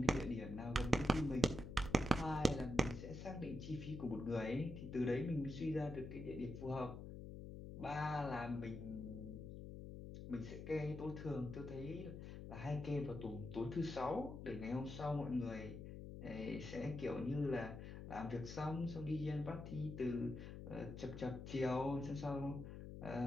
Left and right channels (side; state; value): left; noise; hum, 9 dB below the sound